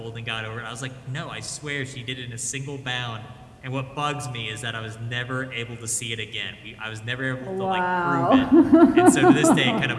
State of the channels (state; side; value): identical; both; correlation 1.00